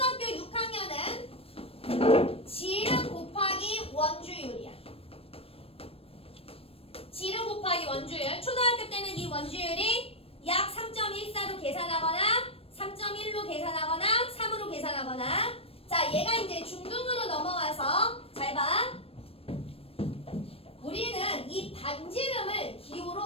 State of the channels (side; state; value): right; late; 0.28 ms